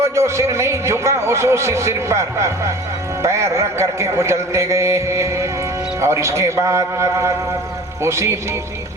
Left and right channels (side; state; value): both; normal; correlation 0.42